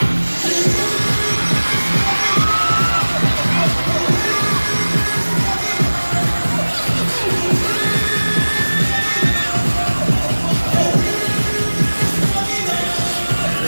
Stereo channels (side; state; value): both; inverted; correlation -1.00